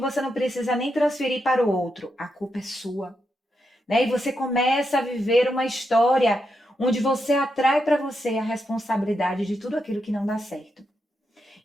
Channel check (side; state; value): both; normal; correlation 0.84